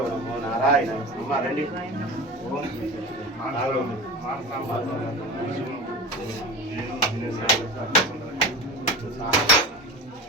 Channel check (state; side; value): normal; both; correlation 0.31